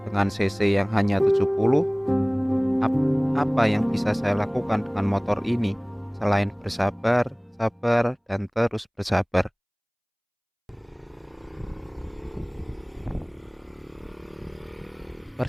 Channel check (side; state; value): both; identical; correlation 1.00